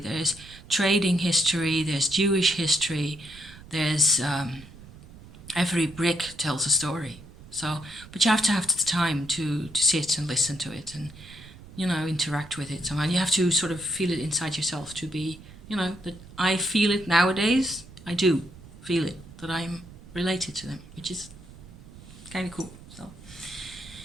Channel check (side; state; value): right; noise; rumble, 19 dB below the sound